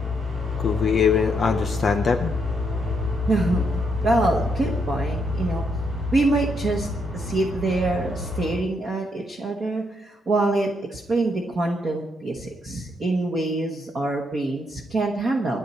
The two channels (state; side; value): normal; both; correlation 0.76